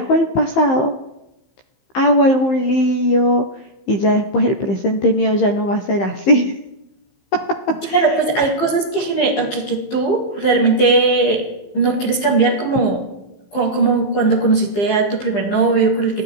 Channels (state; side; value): late; right; 15 ms